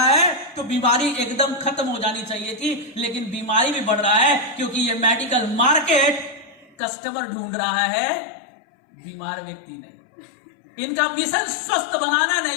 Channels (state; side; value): drops out; right; at 6.8 s